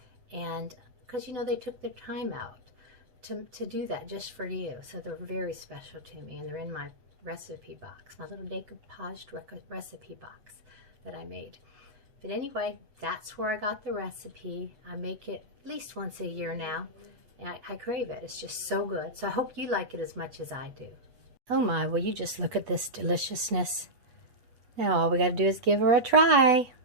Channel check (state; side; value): late; left; 8.1 ms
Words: And because, you know, they took their time out to do that just for you. So they're very special to me, and they're in my recipe box, my little decoupaged recipe box that I made. But anyway, that's where I got the recipe. I make it at least once a year now, and I crave it. It's just so good. So I hope you like it as much as I do. Oh my, will you just look at this deliciousness? Now all we got to do is give her a try.